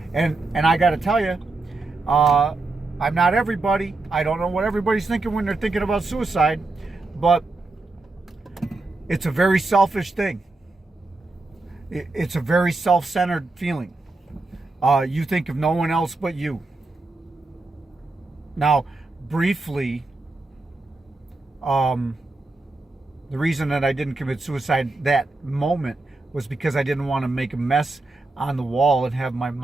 and I got to tell you, I'm not everybody. I don't know what everybody's thinking when they're thinking about suicide, but it's a very selfish thing. It's a very self-centered feeling. You think of no one else but you. Now, briefly, the reason that I didn't commit suicide that moment was because I didn't want to make a mess on the wall and have my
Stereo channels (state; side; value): quieter; left; 3.2 dB